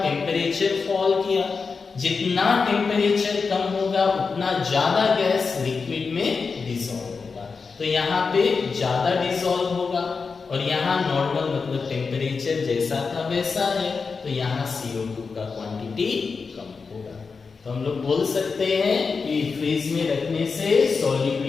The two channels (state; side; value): quieter; right; 4.9 dB